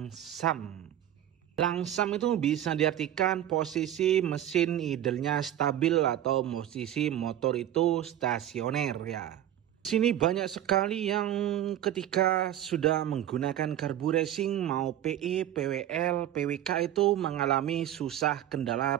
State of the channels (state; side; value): quieter; left; 11.7 dB